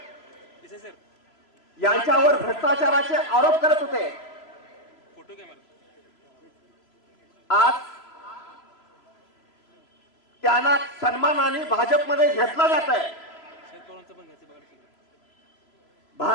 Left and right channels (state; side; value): late; right; 3.0 ms